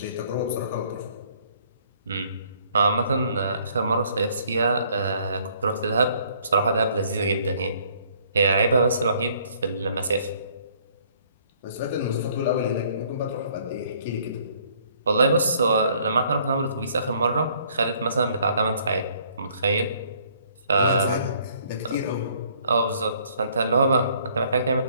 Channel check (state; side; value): inverted; both; correlation -0.62